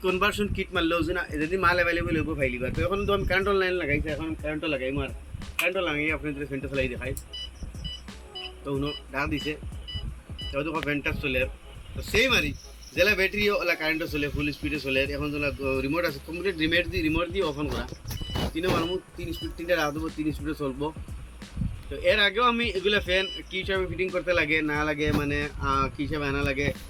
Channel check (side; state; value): both; identical; correlation 1.00